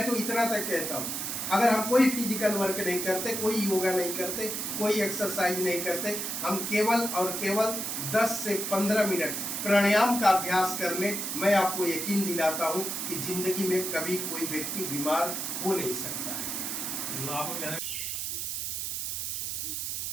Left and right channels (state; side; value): noise; right; hiss, 3 dB below the sound